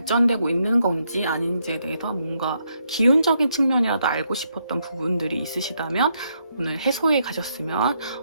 있는 건지 아닌지에 대해서 뭔가 기운적인 측면이라도 알고 싶었던 부분들이 있으시다면 오늘 해소해 가셨으면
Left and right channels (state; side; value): inverted; both; correlation -0.77